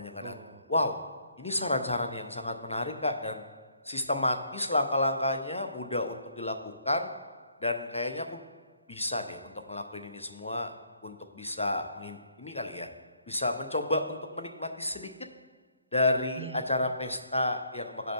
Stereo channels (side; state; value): both; inverted; correlation -0.66